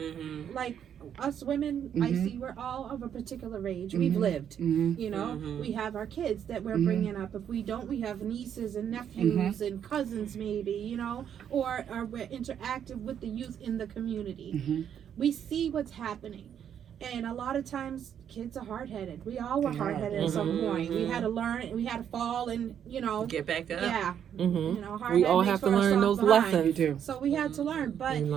Like us women, I Mhm. see we're all of a particular age. We've Mhm. lived. Mhm. You know, Mhm. we have our kids that we're Mhm. bringing up. If we don't, we have nieces and nephews and cousins, maybe, or we're interactive with the youth in the community. Mhm. We see what's happening. And a lot of times, kids are hard-headed. We all were They are. hard-headed at some Mhm. point. We had to learn, we had to fall, and Get back up. yeah, Mm-hmm. you know, hard We head all makes have to for a learn soft those behind. You lessons. do. So we had to learn, but We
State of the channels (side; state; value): left; quieter; 8.9 dB